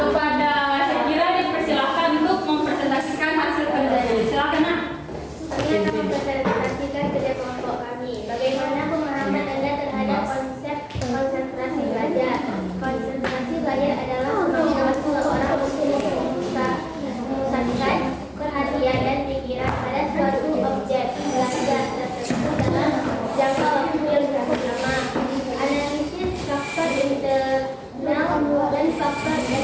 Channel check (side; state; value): both; identical; correlation 1.00